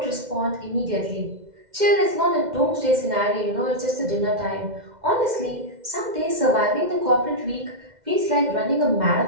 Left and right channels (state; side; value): late; left; 2.0 ms